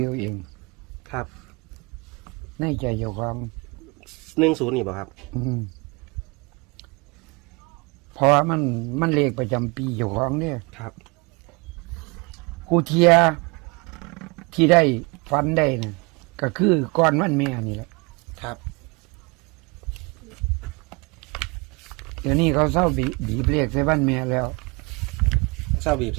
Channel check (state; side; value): quieter; left; 28.1 dB